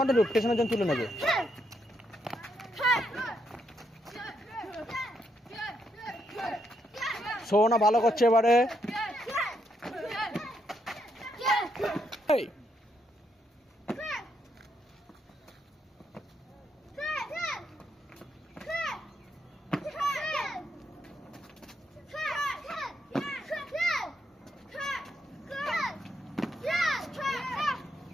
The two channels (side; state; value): both; normal; correlation 0.78